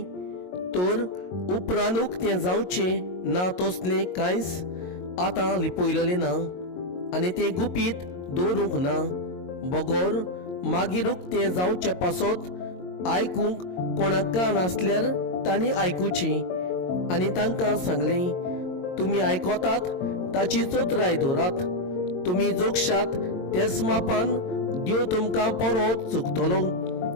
तर उपरांत उक्तें जावचें ना तसलें कांयच आतां लिपयलेलें ना, आनी तें गुपीत दवरूंक ना. बगोर मागीर उक्तें जावचे पासत आयकूंक कोणाक कान आसल्यार तांणी आयकुचें. आनी तांकां सांगलें, तुमी आयकोतात ताची चोत्राय दवरात. तुमी जोगशात तेच मापान देव तुमकां परत चुकतलो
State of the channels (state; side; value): late; right; 22 ms